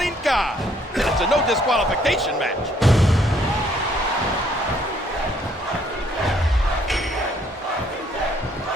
god. And it's a no disqualification match.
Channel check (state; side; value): normal; both; correlation 0.65